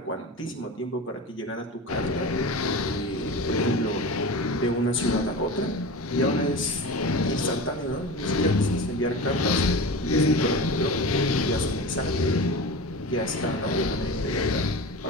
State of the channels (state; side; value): normal; both; correlation 0.30